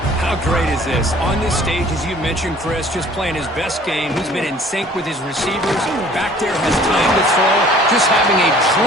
How great is this? On this stage, as you mentioned, Chris, just playing his best game. He's been in sync with his receivers. Back there has time to throw. Just having a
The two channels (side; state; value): both; normal; correlation 0.52